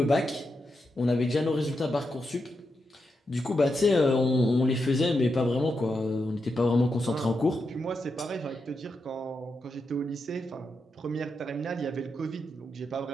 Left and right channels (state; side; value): normal; both; correlation 0.85